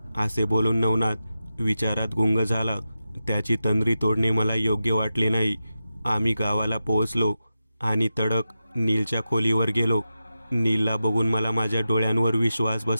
असे बोलून नवनाथ विचारात गुंग झाला. त्याची तंद्री तोडणे मला योग्य वाटले नाही. आम्ही गावाला पोहोचलो आणि तडक नीलच्या खोलीवर गेलो. नीलला बघून मला माझ्या डोळ्यांवर विश्वास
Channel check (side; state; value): both; inverted; correlation -0.91